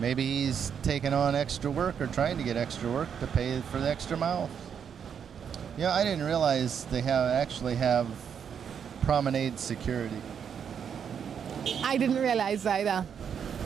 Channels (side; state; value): left; quieter; 7.7 dB